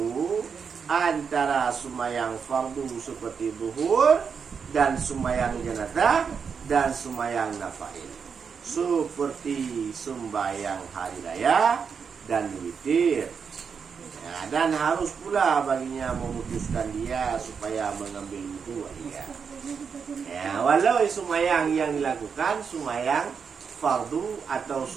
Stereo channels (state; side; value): quieter; left; 6.2 dB